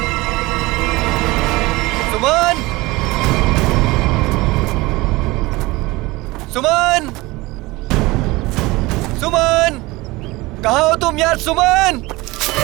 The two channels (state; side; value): quieter; left; 21.4 dB